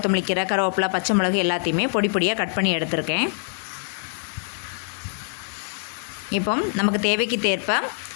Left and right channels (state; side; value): silent; right; digital silence